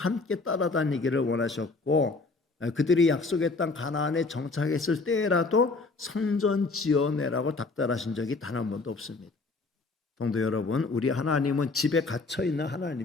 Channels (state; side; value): quieter; right; 3.7 dB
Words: 따라다니기를 원하셨고 그들이 약속의 땅 가나안에 정착했을 때라도 성전 지어내라고 닥달하신 적이 단 한 번도 없습니다. 성도 여러분, 우리 하나님은 집에 갇혀 있는